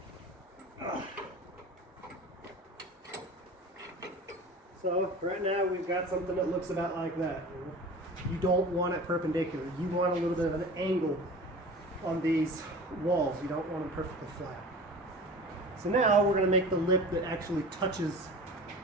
So right now we've got something that looks about like that. You don't want it perpendicular. You want a little bit of an angle on these walls. You don't want them perfectly flat. So now we're going to make the lip that actually touches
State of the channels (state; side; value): normal; both; correlation 0.38